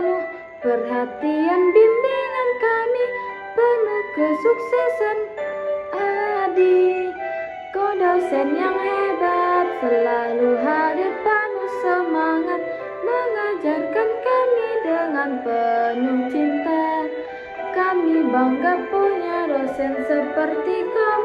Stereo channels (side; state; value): both; identical; correlation 1.00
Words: perhatian, bimbingan kami penuh kesuksesan. Adi, kau dosen yang hebat, selalu hadir penuh semangat, mengajarkan kami dengan penuh cinta. Kami bangga punya dosen seperti